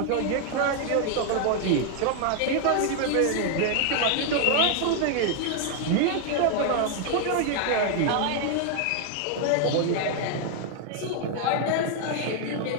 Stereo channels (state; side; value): different; both; correlation 0.00